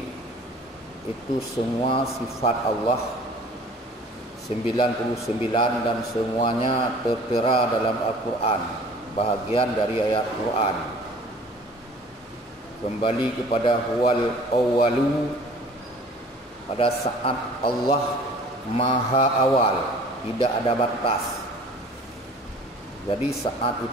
itu semua sifat Allah 99 dan semuanya tertera dalam Al-Quran, bahagian dari ayat Quran. Kembali kepada huwal awwalu, pada saat Allah maha awal, tidak ada batas. Jadi saat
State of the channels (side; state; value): both; normal; correlation 0.48